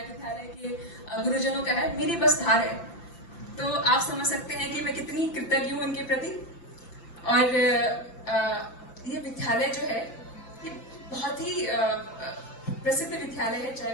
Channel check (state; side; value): late; right; 6.0 ms